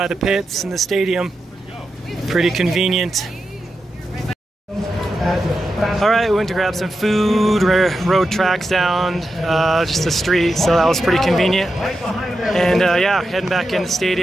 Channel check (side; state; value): both; normal; correlation 0.89